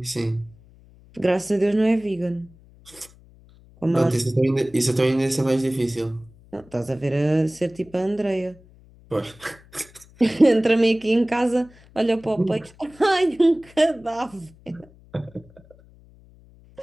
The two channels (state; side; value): noise; left; hum, 26 dB below the sound